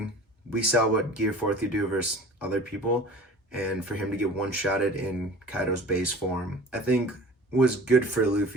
We saw what Gear 4th could do versus other people, and for him to get one-shotted in Kaido's base form, I think was good for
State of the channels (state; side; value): normal; both; correlation 0.42